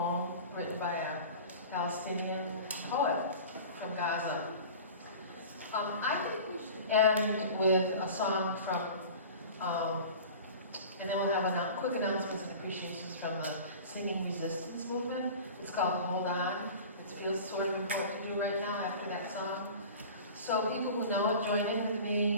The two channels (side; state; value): both; inverted; correlation -0.38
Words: written by a Palestinian poet from Gaza. I think we should end with a song from, and then we'll have quick announcements and appreciations from the Singing Resistance movement. It's called Hold On. It feels sort of important to do right now after that song. So people who know it, join in with